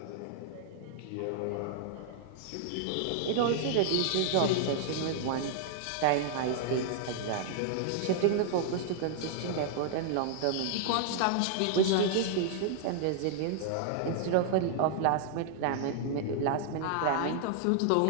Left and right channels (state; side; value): different; both; correlation -0.01